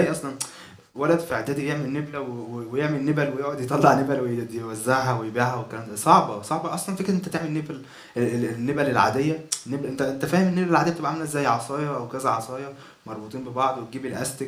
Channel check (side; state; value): both; identical; correlation 1.00